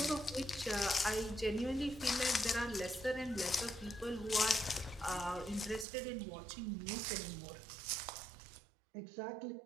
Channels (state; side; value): drops out; left; at 5.9 s